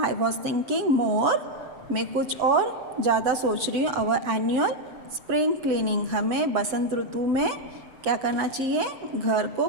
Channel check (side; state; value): left; late; 7.2 ms